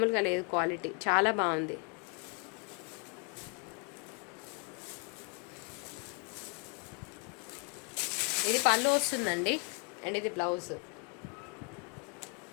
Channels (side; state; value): right; quieter; 35.0 dB